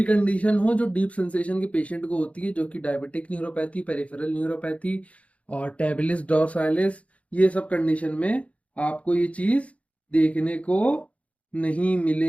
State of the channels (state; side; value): late; right; 0.065 ms